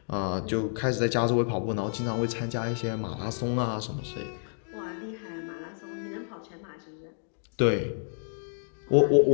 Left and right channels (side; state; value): right; silent; digital silence